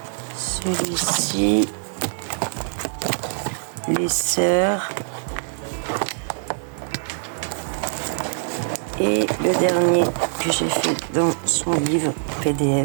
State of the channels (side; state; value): left; silent; digital silence